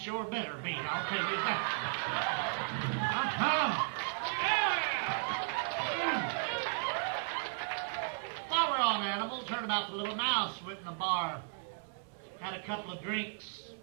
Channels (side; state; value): left; silent; digital silence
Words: better be, I'll tell you that." While we're on animals, heard about the little mouse went in the bar, had a couple of drinks,